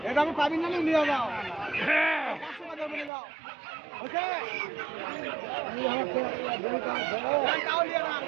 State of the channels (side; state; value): left; drops out; at 3.1 s